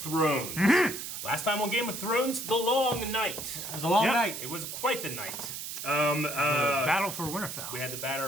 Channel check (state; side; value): noise; right; hiss, 7 dB below the sound